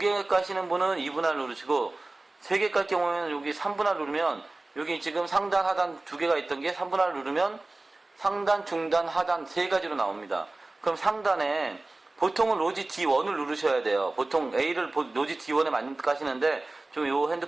까시는 분은 2분할 누르시고 3개 깔 경우에는 여기 3분할 누르면 여기 지금 상단, 하단 2개가 있던 게 3분할 누르면 상단, 중단, 하단 3가지로 나옵니다. 그럼 상단에 보통은 로지 D1을 누르셔야 돼요. 보통 A를 로지 D1에 많이 까시는데 좀 요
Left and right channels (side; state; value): left; quieter; 3.0 dB